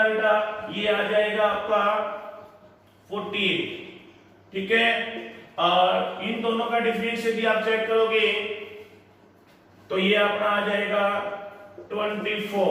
बेटा? ये आ जाएगा आपका 48। ठीक है, और इन दोनों का डिफरेंस यदि आप चेक करोगे तो ये अपना आ जाएगा 24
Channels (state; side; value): identical; both; correlation 1.00